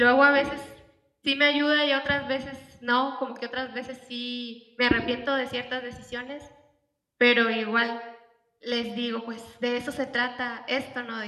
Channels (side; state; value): both; identical; correlation 1.00